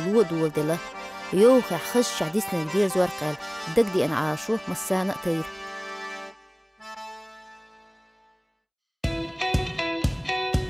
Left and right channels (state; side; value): identical; both; correlation 1.00